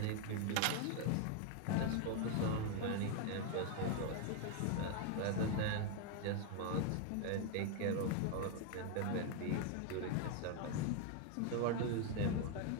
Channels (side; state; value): both; different; correlation 0.00